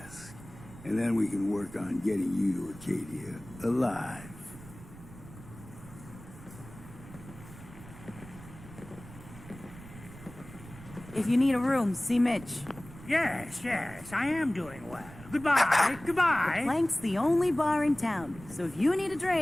and then we can work on getting you to Acadia alive. If you need a room, see Mitch. Yes, I am doing well. Goodbye, goodbye. Plank's the only bar in town, so if you need a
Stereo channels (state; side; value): noise; right; rumble, 17 dB below the sound